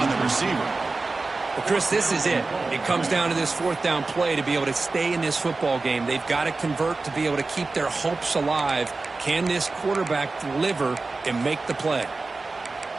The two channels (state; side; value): quieter; left; 3.7 dB